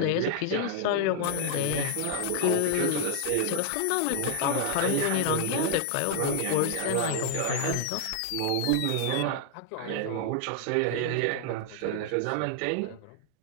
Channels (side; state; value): both; different; correlation 0.00